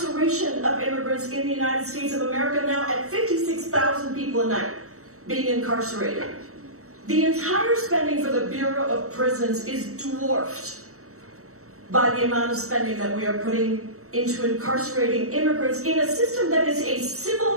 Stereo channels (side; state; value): left; late; 0.64 ms